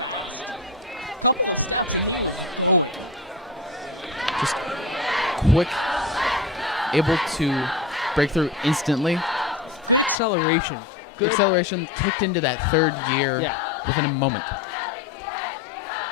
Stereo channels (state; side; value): drops out; right; at 10.2 s